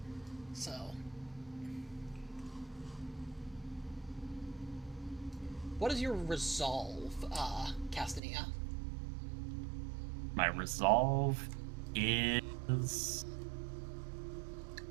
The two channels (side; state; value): left; drops out; at 8.2 s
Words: So... what is your resolve, Castanea? My resolve is